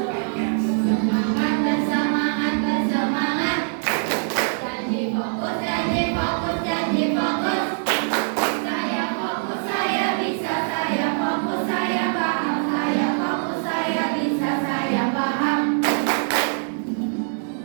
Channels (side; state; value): left; silent; digital silence